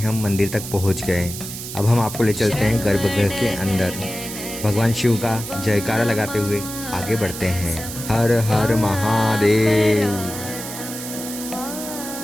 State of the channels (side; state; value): right; noise; hiss, 9 dB below the sound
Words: मंदिर तक पहुँच गए। अब हम आपको ले चलते हैं गर्भगृह के अंदर। भगवान शिव का जयकारा लगाते हुए आगे बढ़ते हैं। हर हर महादेव।